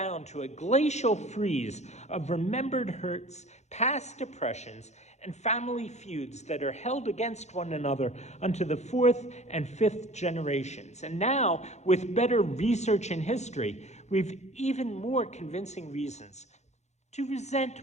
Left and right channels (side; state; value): right; late; 0.33 ms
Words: to a glacial freeze of remembered hurts, past oppressions, and family feuds that are held against one another unto the fourth and fifth generations. And now, with better research in history, we've even more convincing reasons to